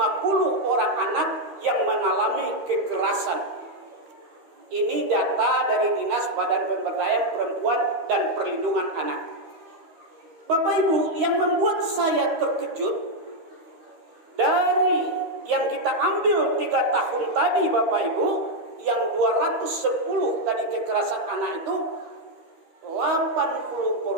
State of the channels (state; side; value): late; left; 12 ms